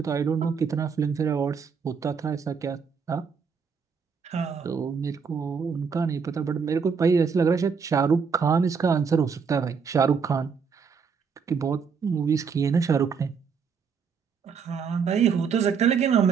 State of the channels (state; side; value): quieter; left; 6.1 dB